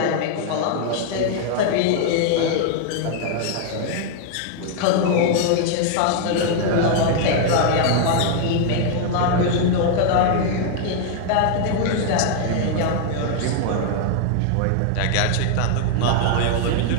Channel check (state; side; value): different; both; correlation 0.00